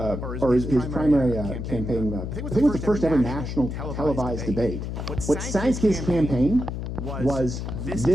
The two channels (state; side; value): noise; left; hum, 5 dB below the sound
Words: his primary campaign, I think it was the first ever national televised debate. What sank his campaign was